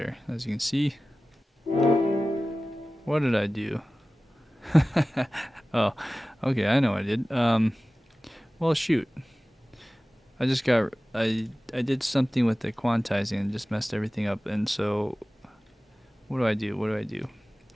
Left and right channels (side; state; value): both; normal; correlation 0.97